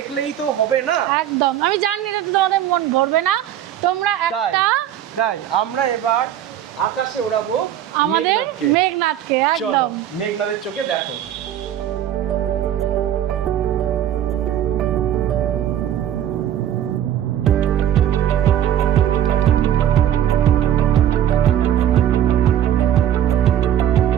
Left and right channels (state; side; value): quieter; left; 10.9 dB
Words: তো হবে না। একদম, আমি জানি এটা তোমাদের মন ভরবে না। তোমরা একটা তাই আমরা এবার আকাশে ওড়াবো আমাদের মেঘনাথকে। মেঘনাথকে চলো একদম মেঘনাথের চোখে দেখো।